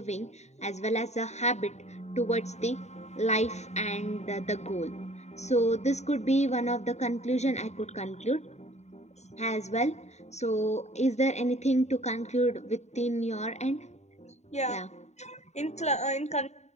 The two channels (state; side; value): late; right; 0.32 ms